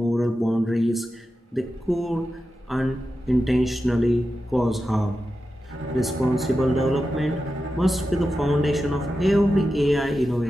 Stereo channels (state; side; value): normal; both; correlation 0.91